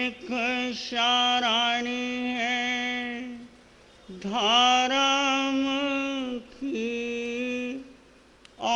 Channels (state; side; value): identical; both; correlation 1.00